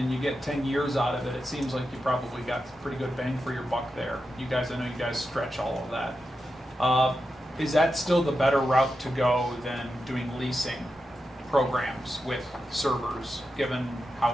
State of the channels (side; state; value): both; normal; correlation 0.89